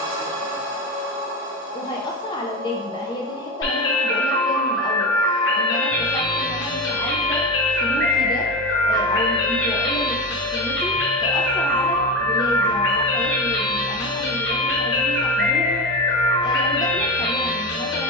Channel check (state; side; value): normal; both; correlation 0.21